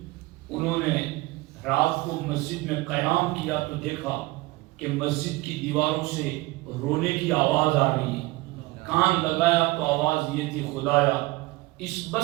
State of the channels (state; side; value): quieter; left; 21.2 dB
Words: انہوں نے رات کو مسجد میں قیام کیا تو دیکھا کہ مسجد کی دیواروں سے رونے کی آواز آ رہی ہے۔ کان لگایا تو آواز یہ تھی، خدایا اس